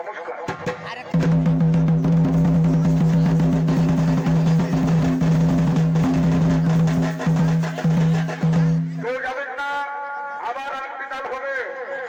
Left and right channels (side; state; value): both; identical; correlation 1.00